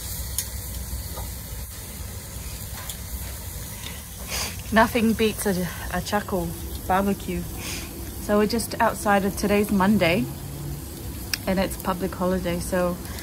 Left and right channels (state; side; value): identical; both; correlation 1.00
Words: Nothing beats a charcoal barbecue. So we're just outside of today's Monday and it's public holiday, so